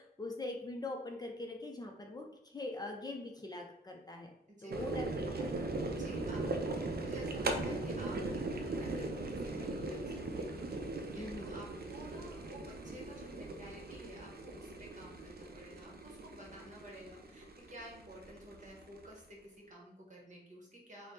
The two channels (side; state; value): both; normal; correlation 0.51